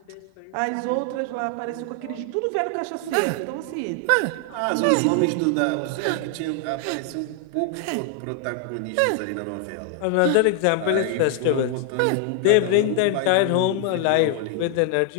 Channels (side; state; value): both; different; correlation 0.00